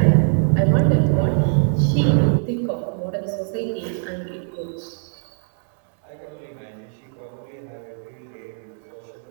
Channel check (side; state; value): left; silent; 64 dB below the other